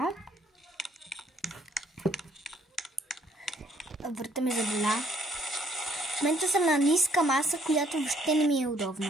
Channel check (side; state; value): both; normal; correlation 0.65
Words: Врата ми заболя. В момента съм на ниска маса, която въобще не ми е